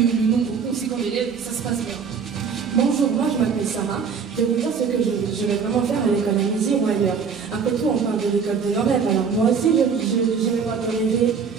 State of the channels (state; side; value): quieter; left; 6.1 dB